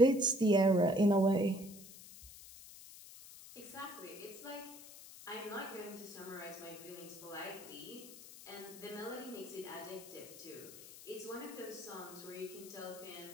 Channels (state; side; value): noise; left; hiss, 16 dB below the sound